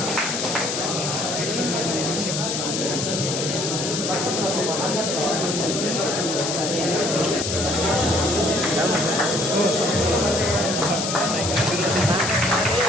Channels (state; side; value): noise; left; hiss, 2 dB below the sound